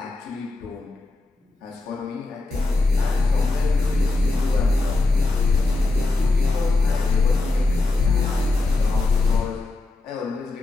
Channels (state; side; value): quieter; right; 3.2 dB